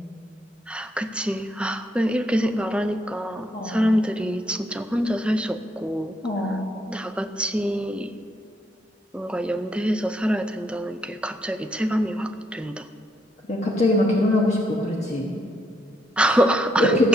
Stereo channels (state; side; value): normal; both; correlation 0.75